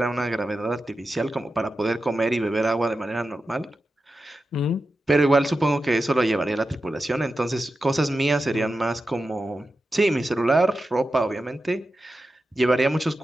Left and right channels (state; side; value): normal; both; correlation 0.91